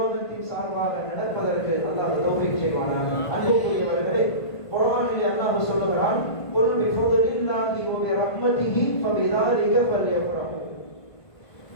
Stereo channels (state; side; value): late; right; 1.5 ms